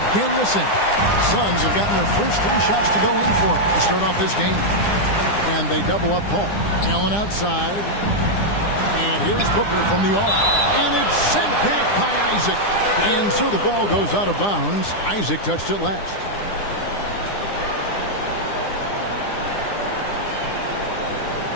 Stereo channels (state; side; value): late; right; 9.9 ms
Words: missing. Suns have gotten their first 3 shots to go in for to start off this game. And they double up Paul. Allen outside. And here's Booker from the arc. And it's sent back by Isaac. And so the ball goes out of bounds. Isaac touched it last.